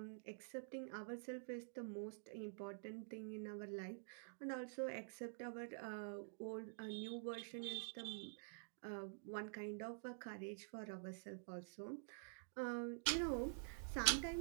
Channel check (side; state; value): left; silent; digital silence